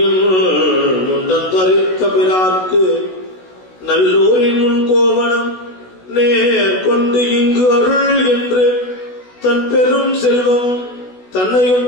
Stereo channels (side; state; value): right; late; 16 ms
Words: முண்டத்தரித்த பிறார்க்கு நல்லூரின் முன் கோவணம் நேர் கொண்டு இங்கு அருள் என்று தன் பெரும் செல்வம் தன்னையும்